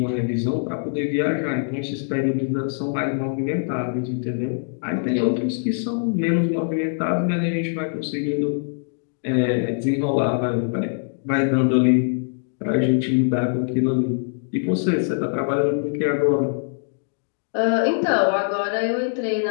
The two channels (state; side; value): silent; right; digital silence